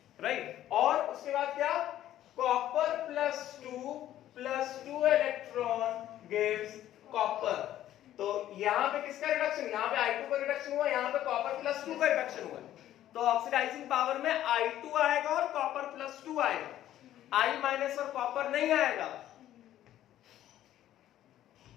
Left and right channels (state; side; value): quieter; right; 12.6 dB